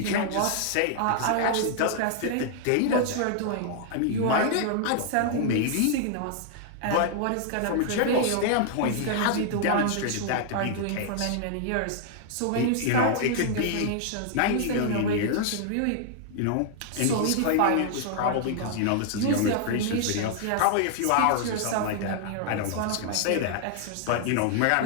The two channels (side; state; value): both; different; correlation 0.00